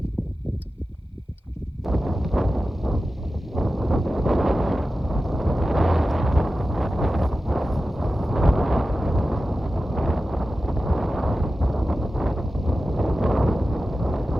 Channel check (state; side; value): normal; both; correlation 0.94